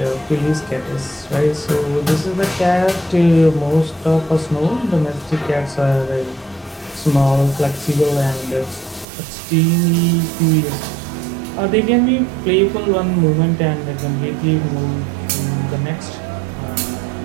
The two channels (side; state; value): left; drops out; at 9.1 s